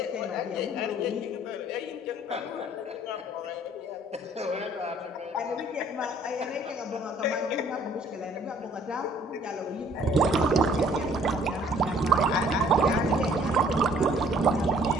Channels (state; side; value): normal; both; correlation 0.58